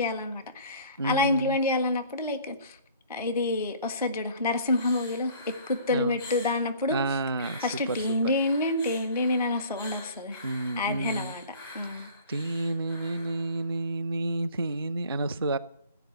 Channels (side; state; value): both; inverted; correlation -0.50